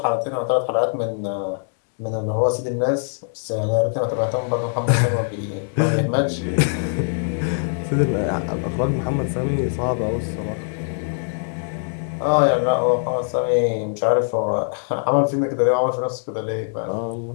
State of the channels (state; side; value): silent; right; digital silence